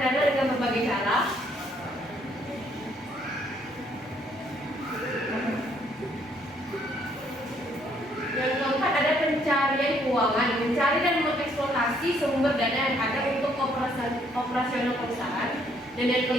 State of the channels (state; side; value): normal; both; correlation 0.67